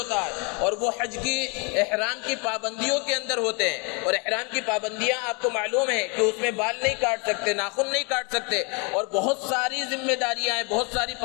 ہے، اور وہ حج کی احرام کی پابندیوں کے اندر ہوتے ہیں، اور احرام کی پابندیاں آپ کو معلوم ہے کہ اس میں بال نہیں کاٹ سکتے، ناخن نہیں کاٹ سکتے، اور بہت ساری ذمہ داریاں ہیں، بہت ساری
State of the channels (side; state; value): right; quieter; 32.9 dB